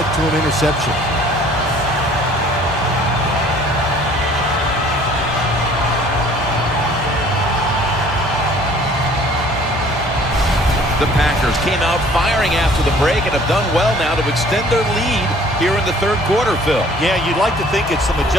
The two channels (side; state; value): both; normal; correlation 0.54